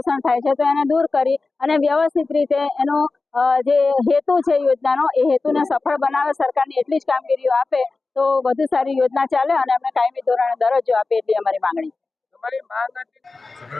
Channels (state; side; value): quieter; right; 3.7 dB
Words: થાય છે, તો એને દૂર કરી અને વ્યવસ્થિત રીતે એનો જે હેતુ છે યોજનાનો એ હેતુને સફળ બનાવે, સરકારની એટલી જ કામગીરીઓ આપે તો વધુ સારી યોજના ચાલે અને અમને કાયમી ધોરણે દરજ્જો આપે એટલી અમારી માંગણી